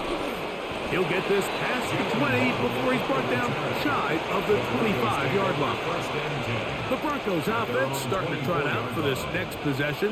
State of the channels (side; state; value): both; identical; correlation 1.00